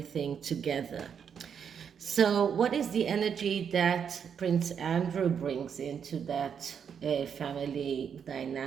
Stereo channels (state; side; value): quieter; left; 7.4 dB